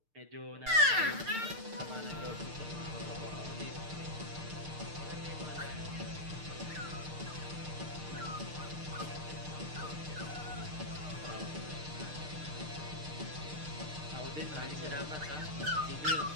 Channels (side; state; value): left; late; 6.6 ms